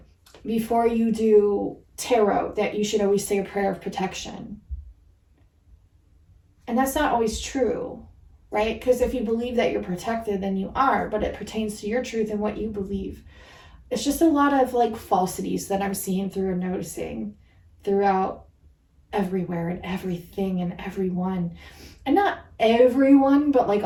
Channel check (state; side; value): identical; both; correlation 1.00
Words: before you do tarot that you should always say a prayer of protection. And that's not always true, right? Because if you believe that you're protected, then you are, but it pertains to your truth and what you believe. It's just a lot of like falsities that I'm seeing through and noticing throughout everywhere and everything and everyone. And not everyone, but like